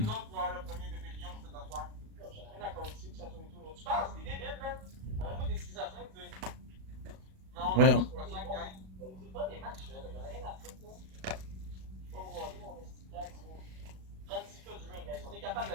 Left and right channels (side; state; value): left; late; 37 ms